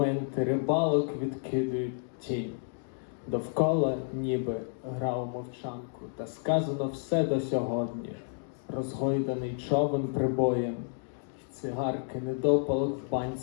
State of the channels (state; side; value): silent; right; digital silence